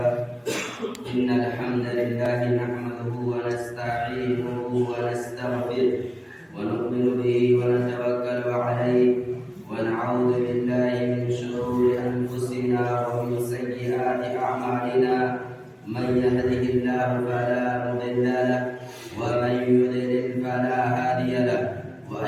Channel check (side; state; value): both; identical; correlation 1.00